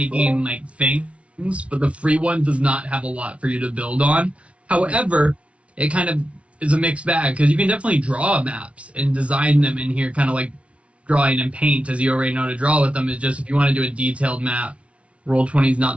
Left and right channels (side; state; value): left; late; 0.062 ms